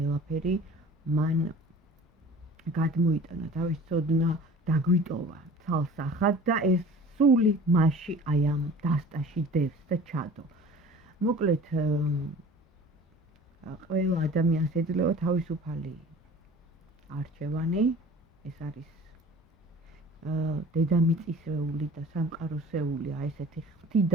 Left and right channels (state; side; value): normal; both; correlation 0.44